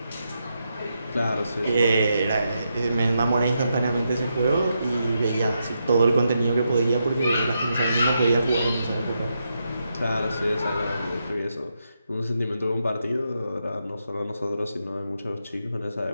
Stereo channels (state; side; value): inverted; both; correlation -0.83